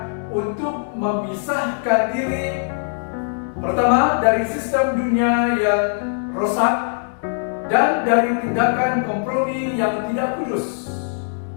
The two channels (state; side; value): silent; right; digital silence